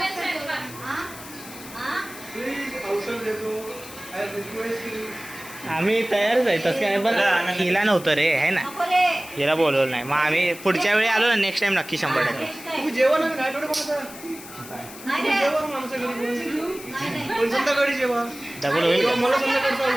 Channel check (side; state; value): left; noise; hiss, 15 dB below the sound